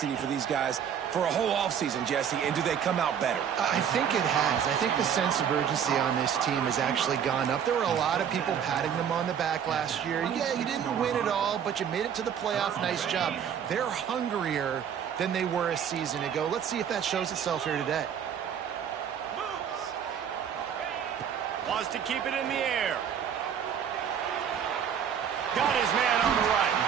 for these guys for a whole offseason, Jesse, and do they come out better? I think it has. I think the sense of urgency on this team has actually gone up. There were a lot of people patting them on the back last year. Yeah, you didn't win it all, but you made it to the playoff. Nice job. They're hungrier than they were a season ago. Let's see if that shows itself here today. Wants to keep it in the air. Got his man on the right.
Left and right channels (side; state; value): left; quieter; 8.3 dB